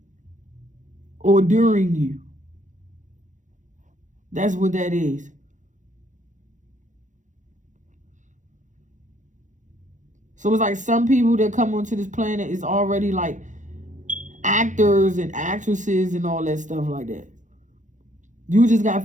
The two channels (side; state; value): left; late; 0.36 ms